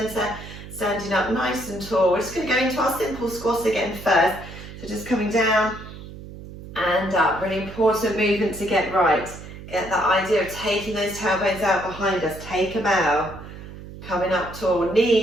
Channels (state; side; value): noise; right; hum, 14 dB below the sound